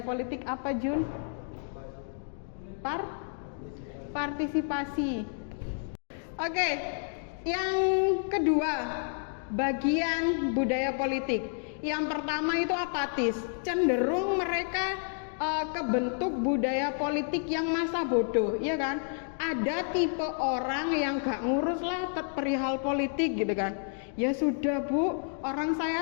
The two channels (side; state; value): right; silent; 58 dB below the other